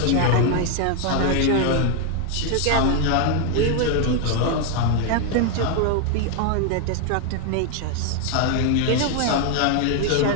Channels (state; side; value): different; both; correlation 0.00